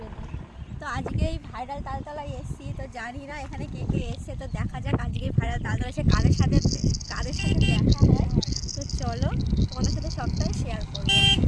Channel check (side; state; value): both; identical; correlation 1.00